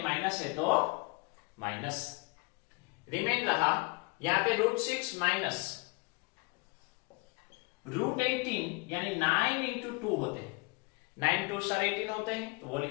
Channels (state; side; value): quieter; right; 29.0 dB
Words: माइनस है तो माइनस, रिमेन रहा यहां पे रूट 6 माइनस रूट 18 यानी 9 इंटू 2 होते हैं, 9 2 18 होते हैं, तो वो